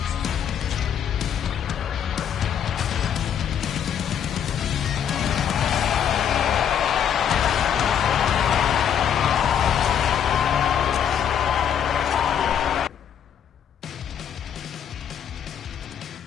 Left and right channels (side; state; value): right; quieter; 8.7 dB